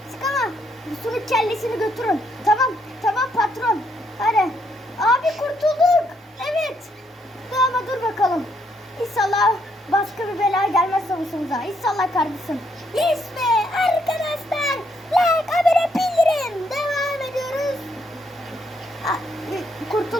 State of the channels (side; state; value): both; normal; correlation 0.73